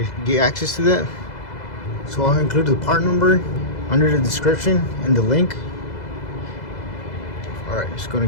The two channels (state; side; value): late; right; 2.0 ms